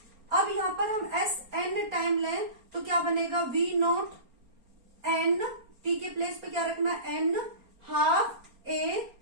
अब यहाँ पर हम sn टाइम लें तो क्या बनेगा, वी नॉट n, t के प्लेस पे क्या रखना, n half a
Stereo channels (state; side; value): late; left; 4.3 ms